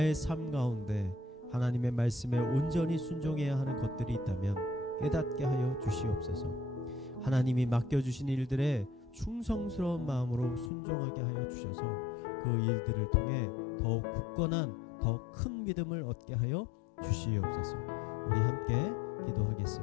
삶 가운데 하나님의 말씀에 온전히 순종해야 하는 것들이 있다면 깨닫게 하여 주시옵소서. 하나님이 맡겨주신 일들에 충성스러운 마음으로 순종하게 하여 주셔서 그 일들을 통해 더욱 굳건한 더 큰 믿음을 얻게 하여 주시옵소서. 우리 함께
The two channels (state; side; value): drops out; right; at 10.7 s